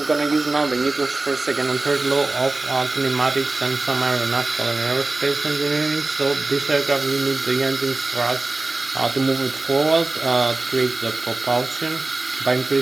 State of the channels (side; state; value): left; quieter; 3.2 dB